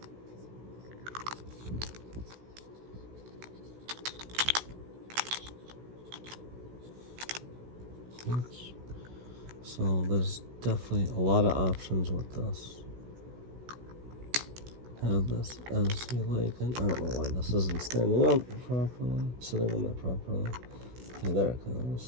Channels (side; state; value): left; late; 16 ms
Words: Oops. So there's definitely a lot of options with this. Have this as you like it. I don't know why this isn't standing up properly, sitting on that properly. Okay, there it